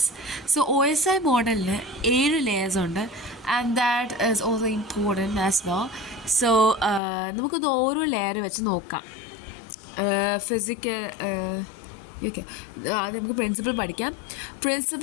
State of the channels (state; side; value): drops out; right; at 7.0 s